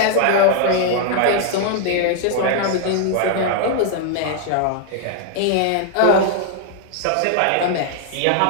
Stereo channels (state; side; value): different; both; correlation 0.00